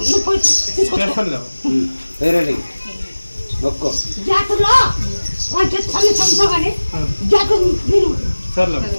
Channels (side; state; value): both; inverted; correlation -1.00